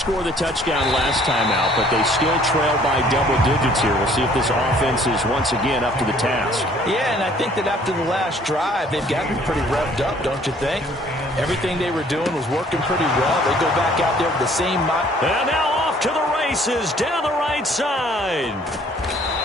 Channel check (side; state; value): both; normal; correlation 0.58